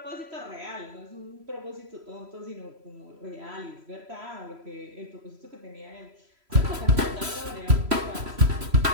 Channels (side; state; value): left; late; 3.0 ms